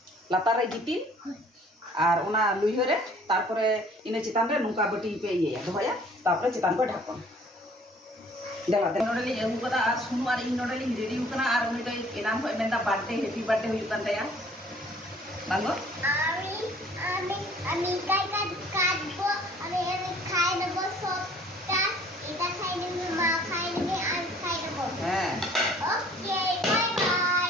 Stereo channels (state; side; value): normal; both; correlation 0.55